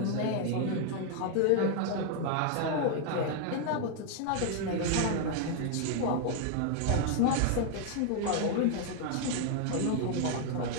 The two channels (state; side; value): different; both; correlation 0.00